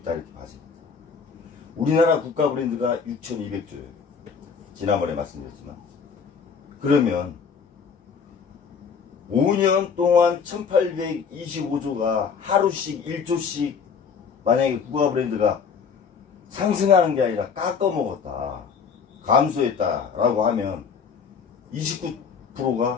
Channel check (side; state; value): right; quieter; 6.1 dB